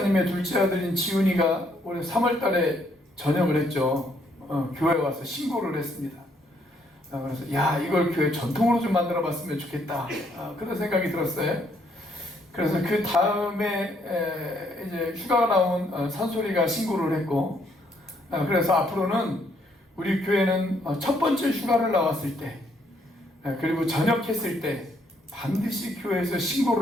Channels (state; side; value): normal; both; correlation 0.70